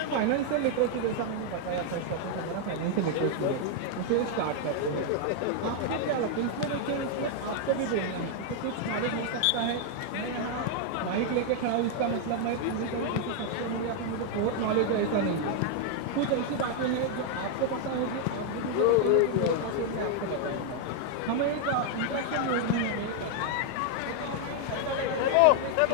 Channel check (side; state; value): both; different; correlation 0.00